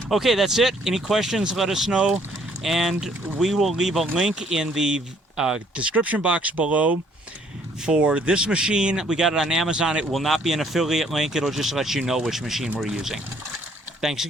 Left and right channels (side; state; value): both; normal; correlation 0.63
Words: Okay, that's it. Any questions, let us know. And we will leave a link in the description box below for this machine. We got it on Amazon. It will not be an affiliate link. It'll just let you know which machine we're using. Thanks